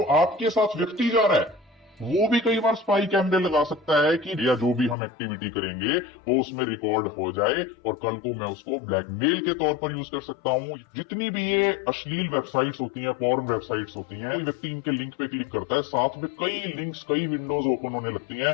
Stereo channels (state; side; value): drops out; right; at 5.0 s